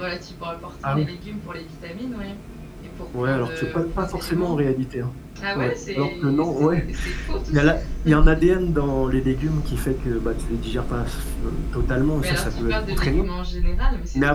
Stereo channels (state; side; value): identical; both; correlation 1.00